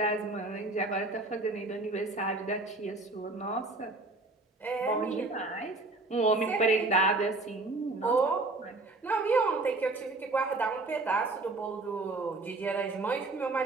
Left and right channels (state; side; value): quieter; left; 3.2 dB